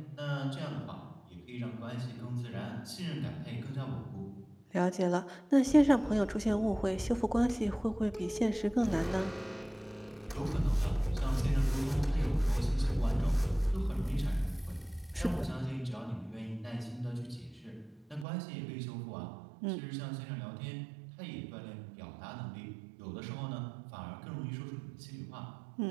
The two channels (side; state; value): left; drops out; at 18.2 s